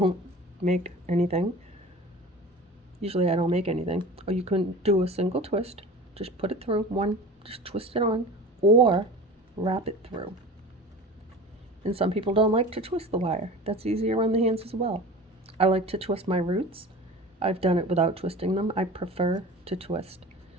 make anything. Usually I don't make anything. Or you can do a single twist. Just put it through. One, just twist it on. Or wrap it through. And some people don't like to twist the wire. That's easier on the hands as well. I like to twist my roots. I've done it without twisting them. I prefer to twist.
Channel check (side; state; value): both; normal; correlation 0.37